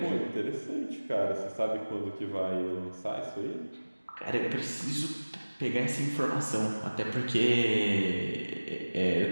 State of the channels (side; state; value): both; inverted; correlation -1.00